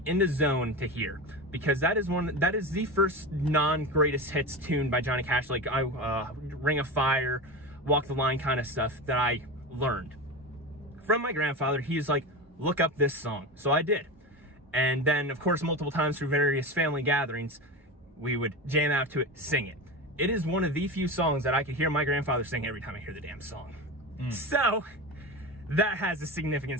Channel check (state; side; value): normal; both; correlation 0.24